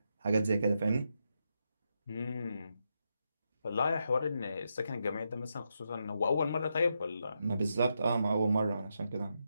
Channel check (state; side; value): inverted; both; correlation -0.83